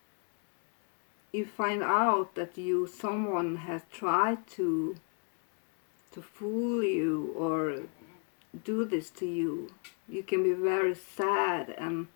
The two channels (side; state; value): right; quieter; 38.7 dB